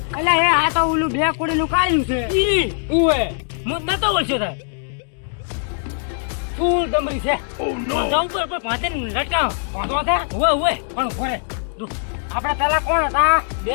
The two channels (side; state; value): right; silent; digital silence